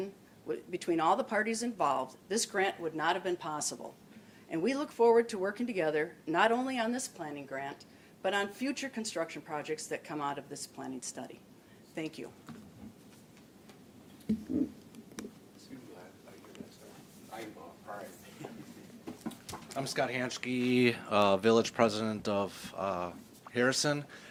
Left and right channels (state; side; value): identical; both; correlation 1.00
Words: between all the parties involved, this grant would not have been possible. And we look forward to working together, not only on this planning grant, but on future construction projects that come out of this planning study. Thank you. I'm Scott Hanschke, Village President of Harrison.